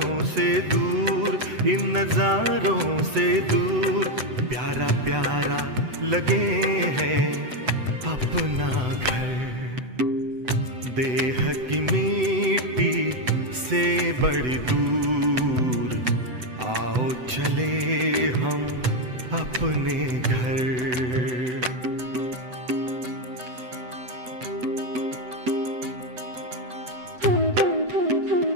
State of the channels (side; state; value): left; late; 7.9 ms